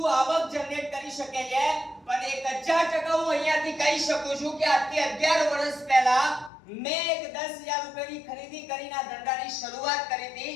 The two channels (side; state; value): right; drops out; at 6.5 s